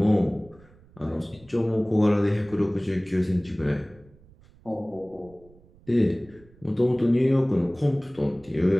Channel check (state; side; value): noise; right; rumble, 26 dB below the sound